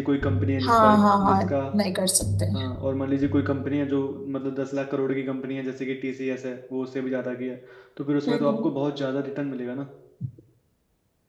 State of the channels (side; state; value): both; identical; correlation 1.00